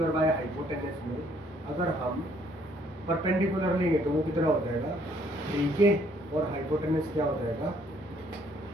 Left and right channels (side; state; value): both; normal; correlation 0.64